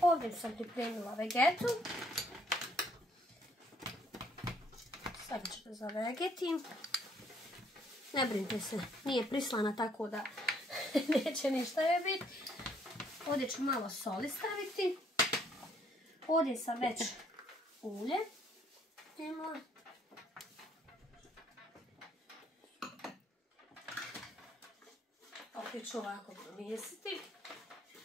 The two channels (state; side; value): normal; both; correlation 0.67